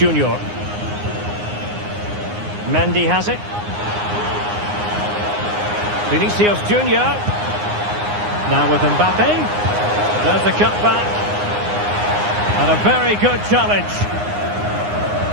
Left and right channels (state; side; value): late; left; 9.7 ms